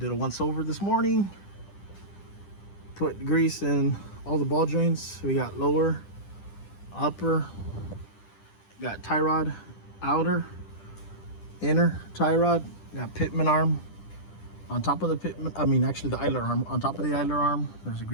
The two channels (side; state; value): right; late; 10 ms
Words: a once over this morning. Put grease in all the ball joints. We got lower, upper, got tie rod, outer, inner tie rod, got pitman arm on top of the pitman, actually the idler arm. On top of the idler arm, there's a